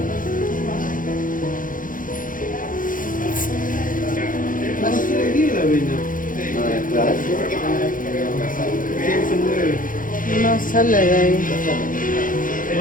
No sale de ahí.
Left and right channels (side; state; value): right; late; 0.39 ms